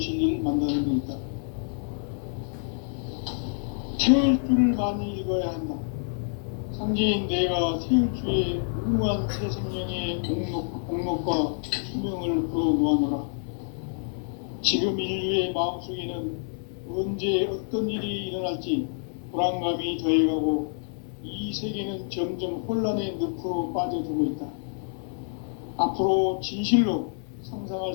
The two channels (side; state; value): right; silent; digital silence